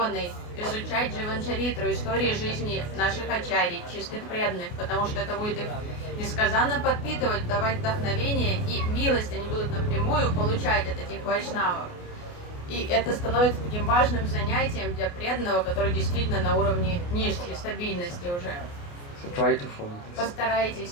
изучать Дживанчаритру, истории жизни наших ачарий, чистых преданных, потому что это будет их несказанно подпитывать, давать вдохновение и милость они будут напрямую получать от этих вайшнавов. И это становится таким важным занятием для преданного, который действительно на уровне ништи, стабильности уже. So try to follow this. Постарайтесь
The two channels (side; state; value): right; late; 28 ms